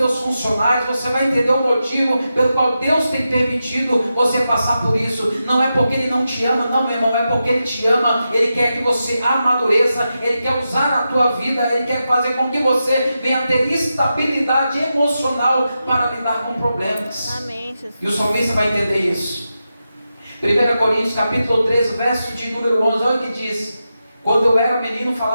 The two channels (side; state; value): both; inverted; correlation -0.89